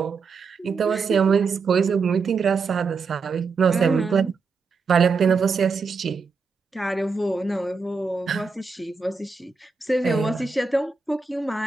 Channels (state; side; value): quieter; left; 4.8 dB